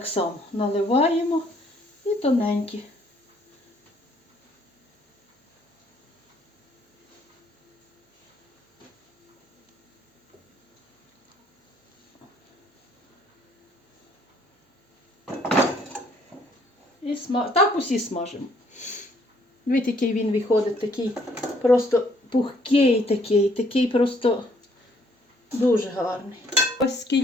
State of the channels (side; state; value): both; normal; correlation 0.65